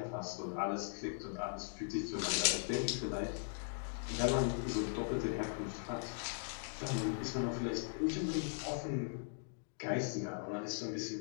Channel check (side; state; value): right; silent; digital silence